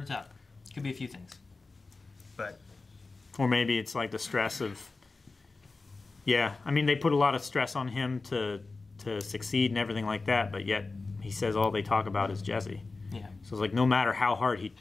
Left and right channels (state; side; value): quieter; right; 3.7 dB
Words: to tell. Could be a few things, but or maybe it's like the stress of I mean they put a lot of stress on him to succeed and everything like that, but yet he says all they talk about is Jesse. Yeah. So it's like no matter how hard he